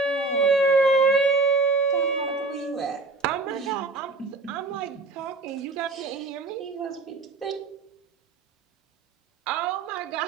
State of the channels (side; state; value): left; quieter; 3.7 dB